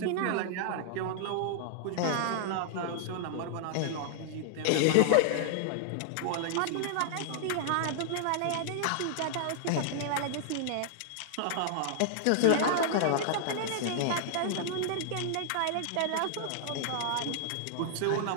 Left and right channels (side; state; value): both; different; correlation -0.01